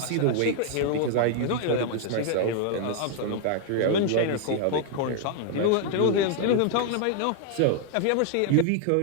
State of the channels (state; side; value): different; both; correlation 0.00